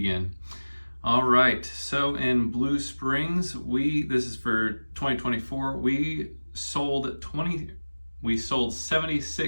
All right, so in Blue Springs, this is for 2024, we sold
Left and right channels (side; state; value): both; inverted; correlation -1.00